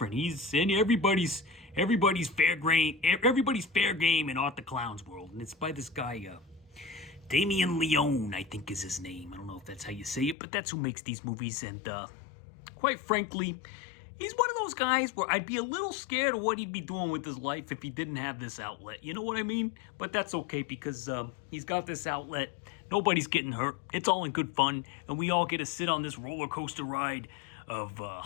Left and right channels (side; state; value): right; drops out; at 10.4 s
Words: in everybody's fair game in Art the Clown's world, and it's by this guy, Damien Leone, I think is his name. I don't know if that's how you say it, but that's who makes these movies. And quite frankly, he's one of those guys where I'd be a little scared of what he'd be doing with his life if he didn't have this outlet. You know what I mean? But that's okay because he's got this outlet. Nobody's getting hurt. It's all in good fun, and we all get to sit on this roller coaster ride of